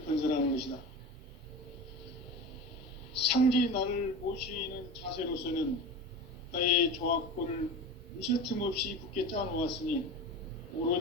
건설하는 것이다. 상제인 나를 모시는 자세로서는 나의 조합권을 무쇠틈 없이 굳게 짜놓았으니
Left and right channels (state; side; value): normal; both; correlation 0.29